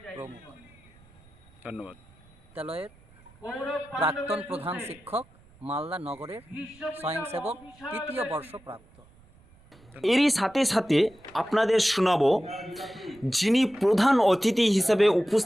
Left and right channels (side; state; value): right; noise; rumble, 27 dB below the sound